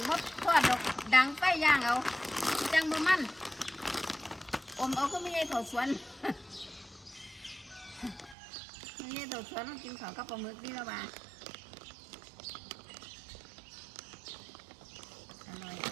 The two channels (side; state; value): left; drops out; at 8.3 s